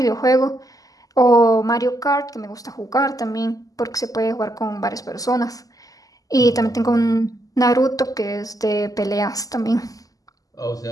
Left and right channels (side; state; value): right; late; 0.17 ms